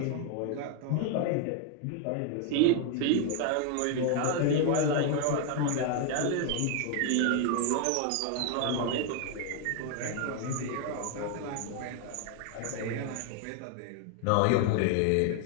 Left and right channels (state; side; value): different; both; correlation 0.01